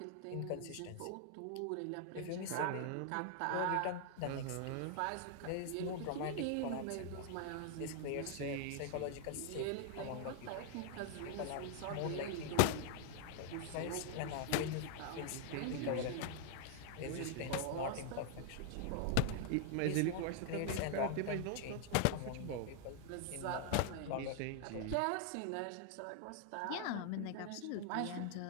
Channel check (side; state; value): both; different; correlation 0.00